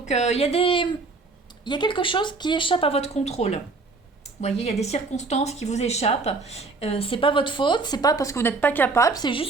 il y a quelque chose qui échappe à votre contrôle. Vous voyez, il y a des circonstances qui vous échappent. C'est pas votre faute, c'est pas parce que vous n'êtes pas capable, c'est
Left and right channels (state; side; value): quieter; left; 3.8 dB